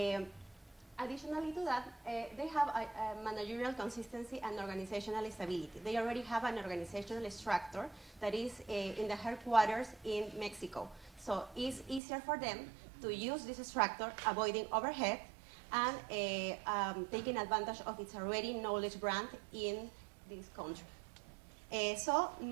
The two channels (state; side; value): drops out; left; at 12.0 s